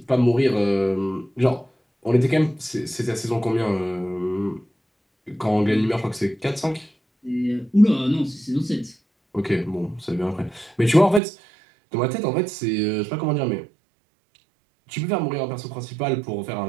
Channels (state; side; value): drops out; left; at 11.2 s